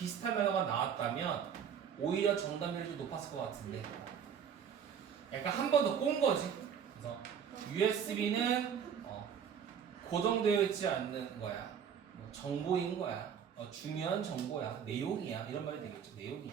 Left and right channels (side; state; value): left; quieter; 7.9 dB